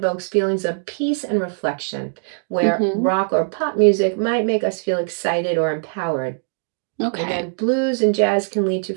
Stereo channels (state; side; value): silent; left; digital silence